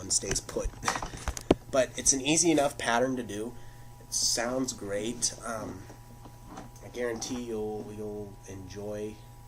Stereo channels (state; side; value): identical; both; correlation 1.00